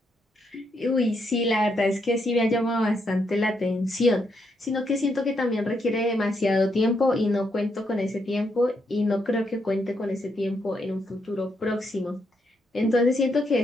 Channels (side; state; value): both; normal; correlation 0.78